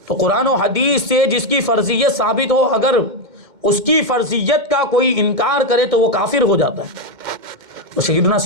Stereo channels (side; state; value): left; late; 2.1 ms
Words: تو قرآن و حدیث سے جس کی فرضیت ثابت ہو اگر اس کی فرضیت کا کوئی انکار کرے تو وہ کافر ہو جاتا ہے. تو سیدنا